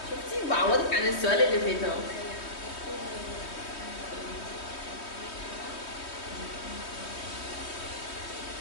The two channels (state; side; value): late; right; 3.2 ms